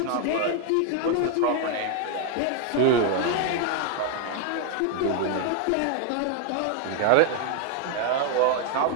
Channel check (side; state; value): both; different; correlation 0.00